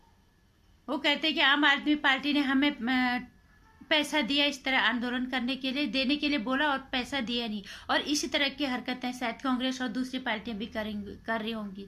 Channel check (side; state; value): both; identical; correlation 1.00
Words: वो कहते हैं कि आम आदमी पार्टी ने हमें पैसा दिया इस तरह आंदोलन करने के लिए, देने के लिए बोला और पैसा दिया नहीं, और इसी तरह की हरकतें शायद कांग्रेस और दूसरी पार्टियां भी कर रही होंगी।